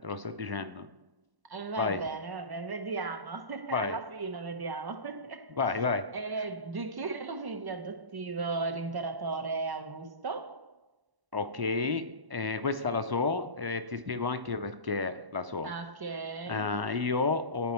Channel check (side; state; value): left; late; 1.1 ms